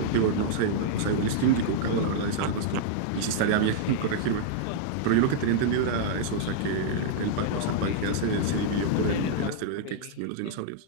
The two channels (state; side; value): different; both; correlation -0.01